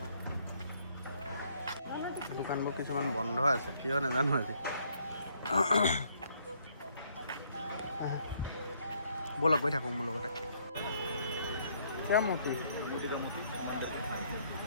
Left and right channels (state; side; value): inverted; both; correlation -0.68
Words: দোকানবোৰ কিছুমান বন্ধ আছে, কিয় নাজানো আজি। ব'লক গৈ থাকোঁ মোৰ লগতে। क्या मोती